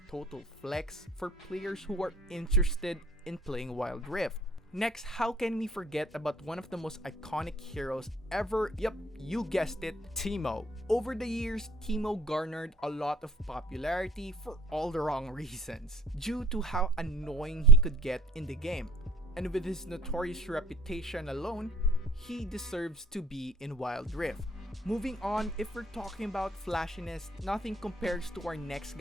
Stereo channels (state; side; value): normal; both; correlation 0.53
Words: total flex for players who are interested in playing Wild Rift. Next, how can we forget about one of the most iconic heroes ever? Yep, you guessed it, Teemo. Over the years, Teemo garnered a lot of popularity for all the wrong reasons, due to how annoying he could get in the game. And with his notorious reputation alone, he deserves to be in Wild Rift. Moving on, if we're talking about flashiness, nothing compares to our next